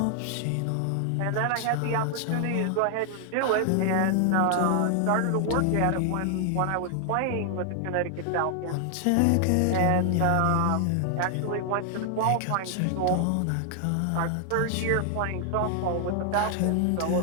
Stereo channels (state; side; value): different; both; correlation 0.00